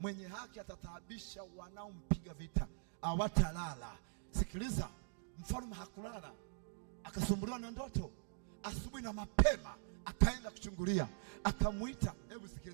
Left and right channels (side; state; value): left; silent; digital silence